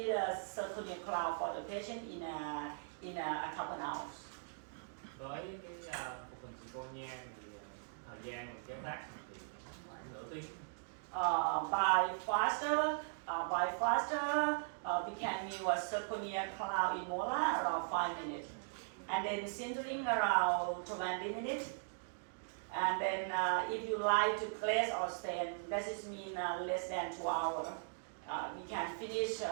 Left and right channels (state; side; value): silent; left; digital silence